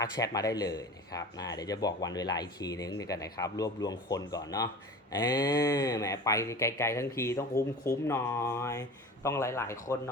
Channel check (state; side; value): normal; both; correlation 0.36